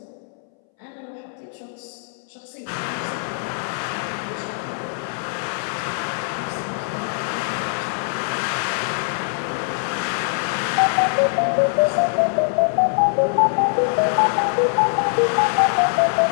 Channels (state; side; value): silent; right; 63 dB below the other